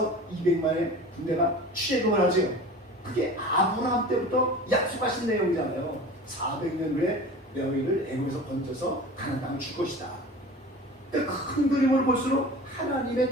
200만의 군대가 출애굽을 하죠. 그게 아브라함 때부터 약속하신 내용이잖아요. 400년 후에 너희를 애굽에서 건져서 가나안 땅을 줄 것이다. 큰 그림을 볼수록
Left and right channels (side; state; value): both; normal; correlation 0.37